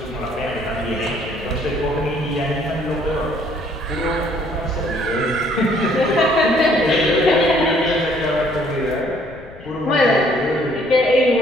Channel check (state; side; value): noise; left; rumble, 20 dB below the sound